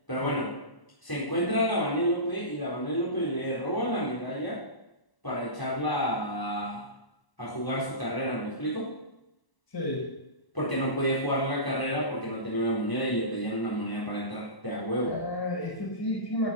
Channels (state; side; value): late; right; 1.0 ms